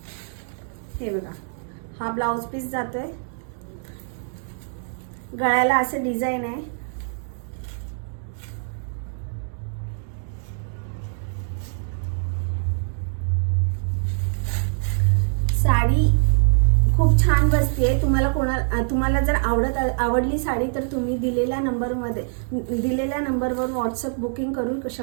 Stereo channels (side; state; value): left; silent; digital silence